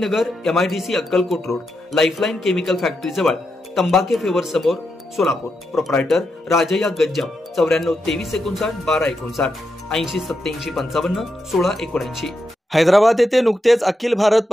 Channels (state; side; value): normal; both; correlation 0.85